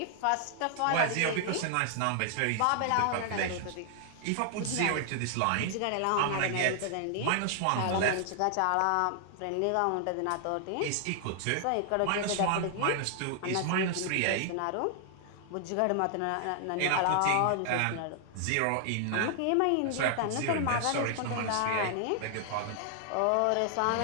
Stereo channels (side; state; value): both; different; correlation 0.00